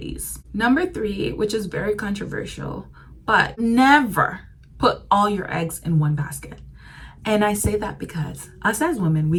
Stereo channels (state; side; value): identical; both; correlation 1.00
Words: Number 3, which is very controversial, but never put all your eggs in one basket. And I say that because us as women, we